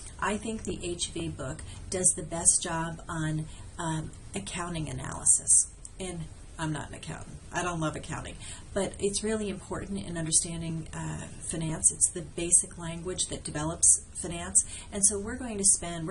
I think the HV book does the best job on accounting analysis. And I'm not an accountant. I don't love accounting, but it's really important in understanding finance. It's the basic language that develops finance, and so we're going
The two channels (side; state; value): both; identical; correlation 1.00